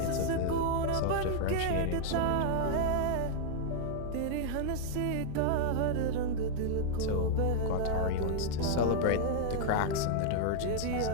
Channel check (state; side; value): different; both; correlation -0.01